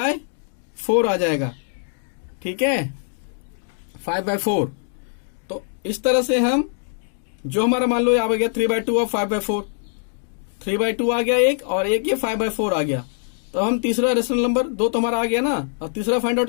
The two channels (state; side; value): silent; right; digital silence